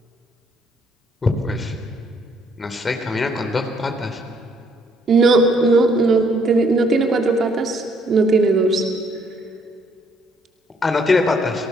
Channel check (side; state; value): both; normal; correlation 0.67